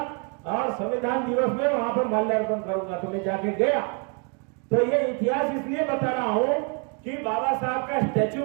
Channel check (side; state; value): left; quieter; 37.2 dB